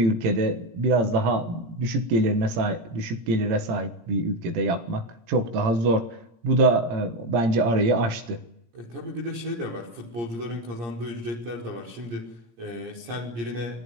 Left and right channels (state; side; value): late; left; 17 ms